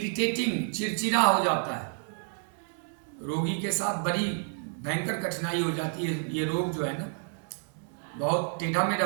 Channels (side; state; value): left; silent; 57 dB below the other